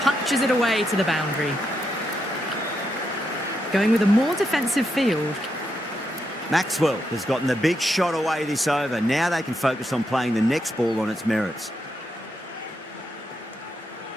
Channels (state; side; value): normal; both; correlation 0.82